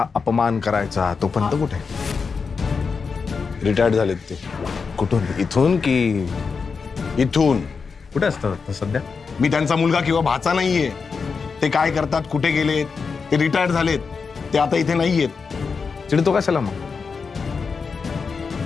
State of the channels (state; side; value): quieter; right; 5.2 dB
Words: अपमान करायचा. तो पंत कुठे? रिटायर्ड झालेत ते. कुठून, इथून की इथून. कुठे असतात आता सध्या? मी त्यांचा मुलगा किंवा भाचा नाहीये. ते काय करतात, कुठे गेलेत, ते रिटायर्ड झालेत, ते आता इथे नाहीयेत. चिडतो कशाला मग?